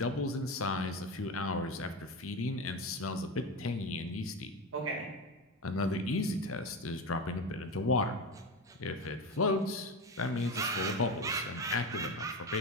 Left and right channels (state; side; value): normal; both; correlation 0.20